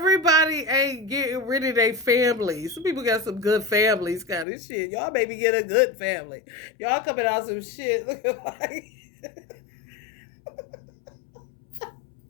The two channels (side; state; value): right; drops out; at 4.5 s